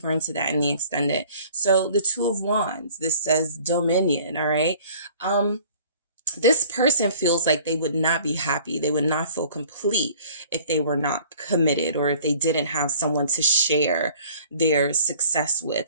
into that in the extended. So the Two of Wands, this says dominion. All right. this person feels like they would not be happy. They would not feel complete if they were not committed, or if they didn't have someone to share their success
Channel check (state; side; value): inverted; both; correlation -0.51